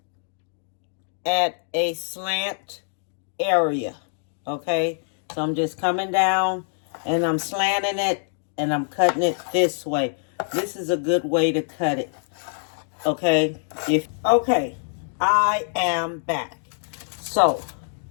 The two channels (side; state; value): right; silent; digital silence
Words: at a slant area. Okay? So I'm just coming down and I'm slanting it and I'm cutting it this way. This is a good way to cut it. Okay? Okay, I am back. So,